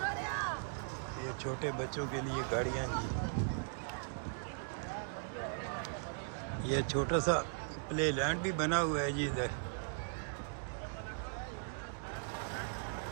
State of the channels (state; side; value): silent; left; digital silence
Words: ये छोटे बच्चों के लिए गाड़ियाँ जी। ये छोटा सा प्ले लैंड भी बना हुआ है जी इधर।